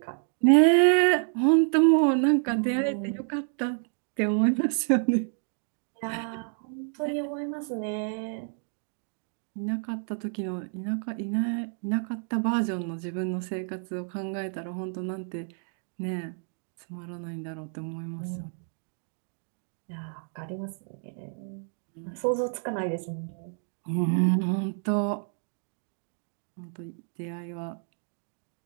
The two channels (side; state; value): left; silent; 59 dB below the other